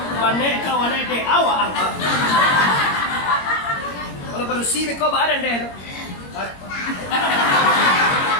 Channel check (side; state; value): right; late; 21 ms